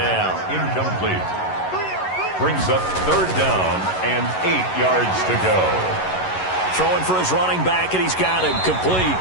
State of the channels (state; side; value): late; right; 11 ms